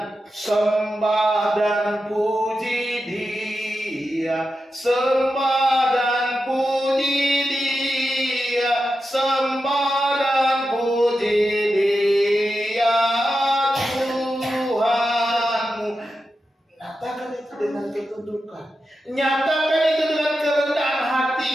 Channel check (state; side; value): normal; both; correlation 0.90